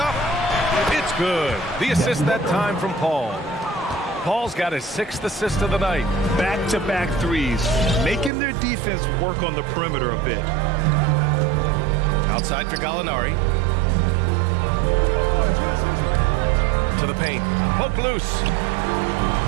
It's good. The assist that time from Paul. Paul's got his 6th assist of the night. Back-to-back threes, making their defense work on the perimeter a bit. Outside for Gallinari. To the paint. Poke loose.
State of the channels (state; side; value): drops out; left; at 8.3 s